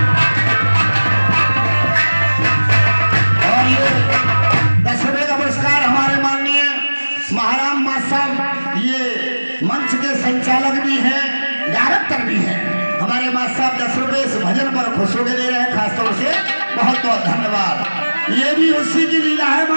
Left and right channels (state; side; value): inverted; both; correlation -1.00